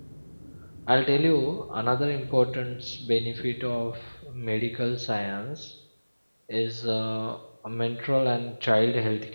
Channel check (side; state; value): both; inverted; correlation -1.00